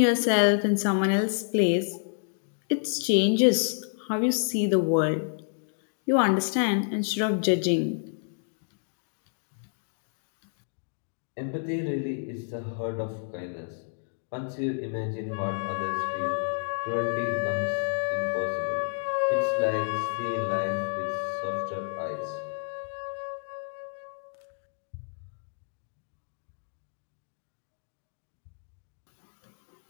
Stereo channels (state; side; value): silent; right; digital silence